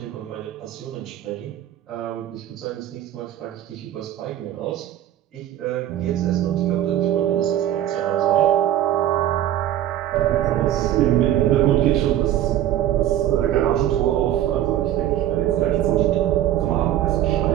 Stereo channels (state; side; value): quieter; left; 12.3 dB